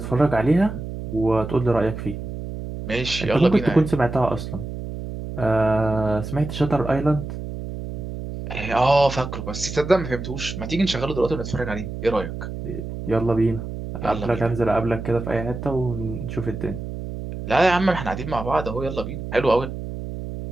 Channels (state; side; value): noise; right; hum, 8 dB below the sound